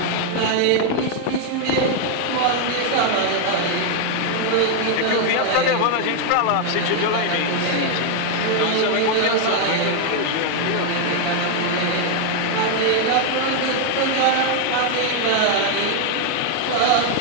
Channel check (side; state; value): both; different; correlation 0.00